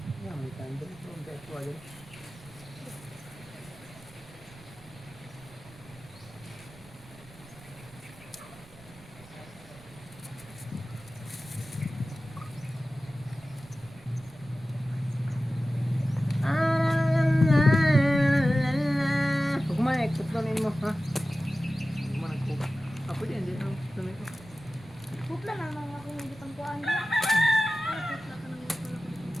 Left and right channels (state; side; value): noise; right; rumble, 21 dB below the sound